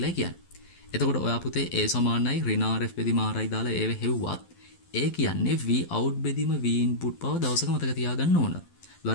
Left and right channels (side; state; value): right; late; 12 ms